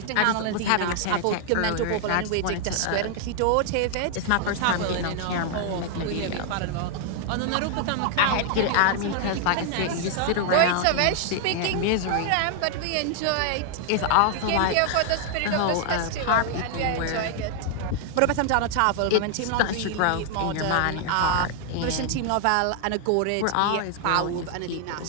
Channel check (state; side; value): different; both; correlation 0.00